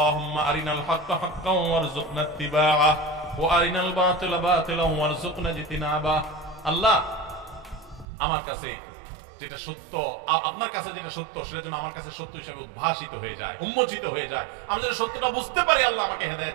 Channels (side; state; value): left; drops out; at 8.1 s